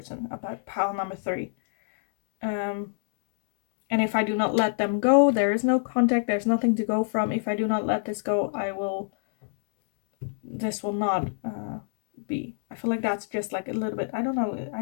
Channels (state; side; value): silent; right; digital silence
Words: about pile number 3. And if I do not let them go, there is no contact, there's nothing to go from. If I do not let this go, this will not be. I feel like that's just like a little bit, I don't know, I